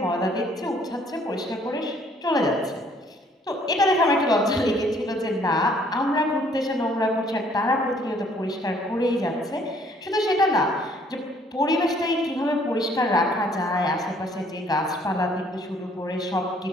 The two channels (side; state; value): both; normal; correlation 0.62